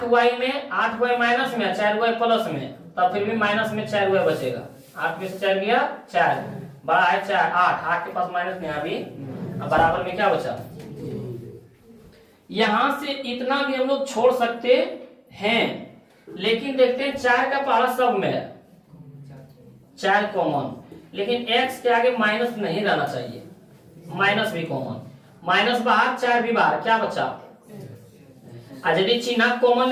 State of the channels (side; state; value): both; identical; correlation 1.00